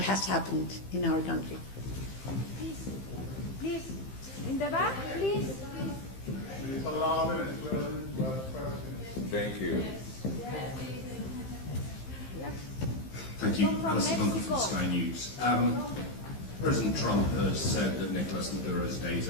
has happened in our country. Please, in the back, please. Thank you. Thank you. Alison Bunker from Sky News. President Trump has said that Nicolás Maduro's days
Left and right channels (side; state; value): right; late; 15 ms